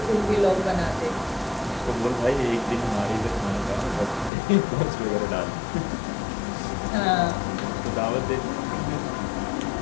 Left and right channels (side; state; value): right; drops out; at 4.3 s